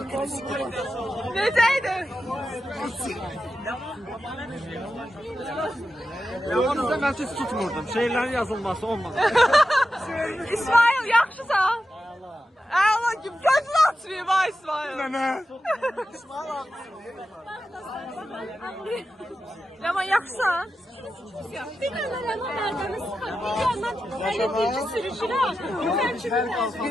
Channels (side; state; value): both; normal; correlation 0.90